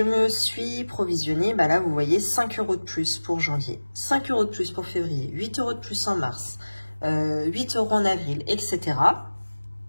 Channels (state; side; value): inverted; both; correlation -1.00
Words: me suis provisionné, là vous voyez, 5 € de plus pour janvier, 5 € de plus pour février, 8 € de plus en mars, 8 € en avril, etc.